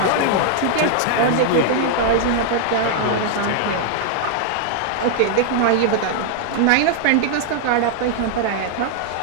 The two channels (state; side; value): different; both; correlation 0.00